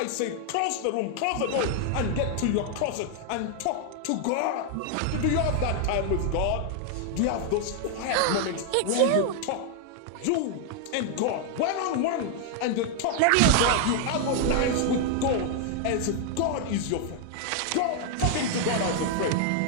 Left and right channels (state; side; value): different; both; correlation 0.00